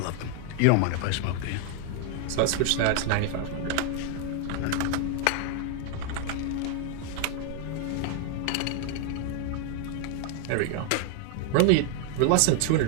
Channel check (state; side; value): different; both; correlation 0.00